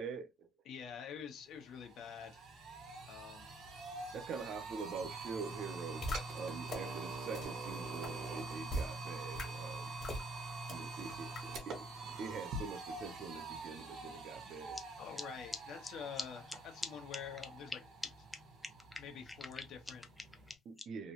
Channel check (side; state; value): both; normal; correlation 0.65